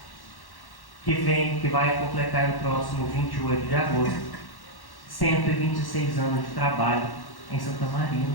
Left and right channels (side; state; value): right; late; 1.1 ms